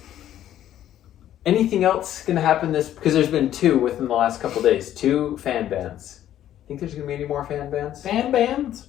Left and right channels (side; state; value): right; quieter; 11.8 dB